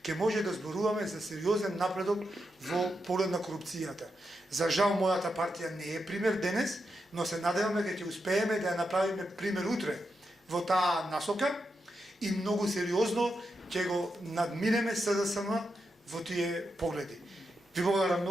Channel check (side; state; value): both; normal; correlation 0.86